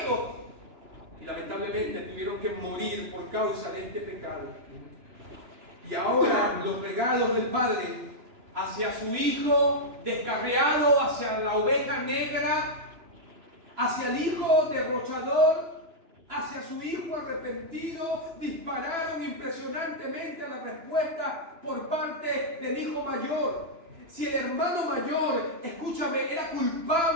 Y lamentablemente tuvieron que morir por causa de este pecado. Y ahora los regalos del Padre hacia su hijo descarriado, hacia la oveja negra, hacia el hijo derrochador, hacia su hijo arrepentido, dispararon impresionantemente a la respuesta por parte del hijo mayor. Si el hermano mayor, escúchame, era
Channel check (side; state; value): left; late; 2.9 ms